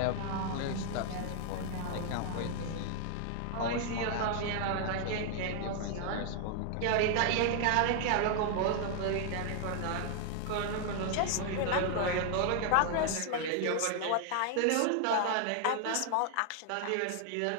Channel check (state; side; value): different; both; correlation 0.00